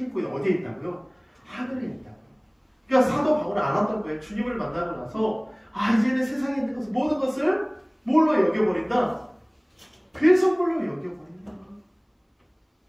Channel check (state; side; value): identical; both; correlation 1.00